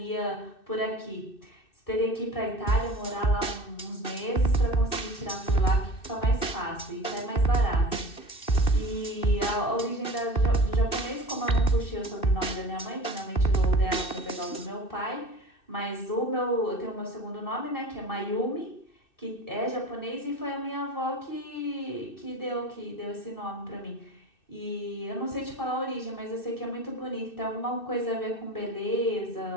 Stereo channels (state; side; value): late; right; 2.6 ms